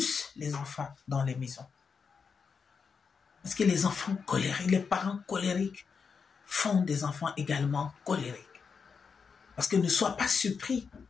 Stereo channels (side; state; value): right; quieter; 5.7 dB